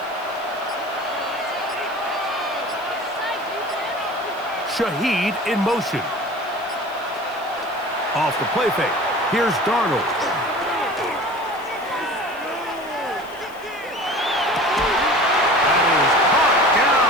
Shaheed in motion. Off the play fake. Here's Darnold. That is caught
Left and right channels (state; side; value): noise; left; hiss, 25 dB below the sound